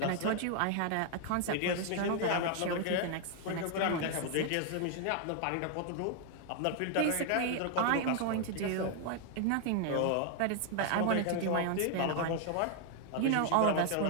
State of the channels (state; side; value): different; both; correlation 0.00